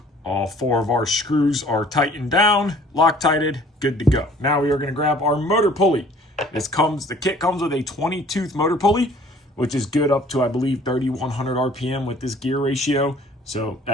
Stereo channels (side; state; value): both; normal; correlation 0.53